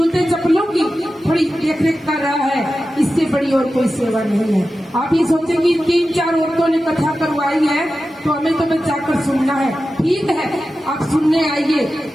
चप्पलों की थोड़ी देख रेख कर रहा है। इससे बड़ी और कोई सेवा नहीं है। आप ये सोचेंगे 3-4 औरतों ने कथा करवाई है तो हमें तो बस जाकर सुनना है। ठीक है, आप सुनने आइए,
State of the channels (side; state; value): both; normal; correlation 0.93